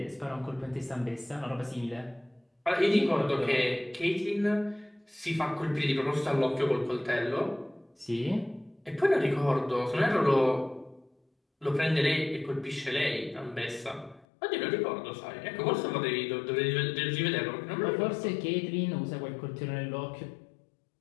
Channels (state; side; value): drops out; right; at 14.2 s